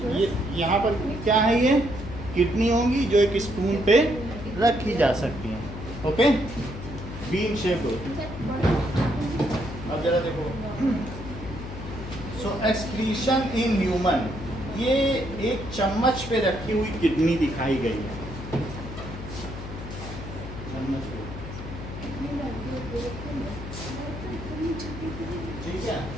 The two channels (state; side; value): noise; left; hum, 10 dB below the sound